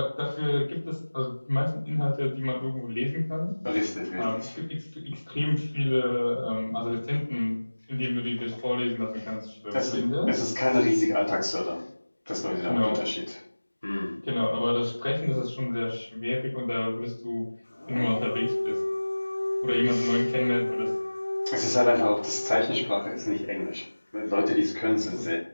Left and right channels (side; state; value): both; inverted; correlation -1.00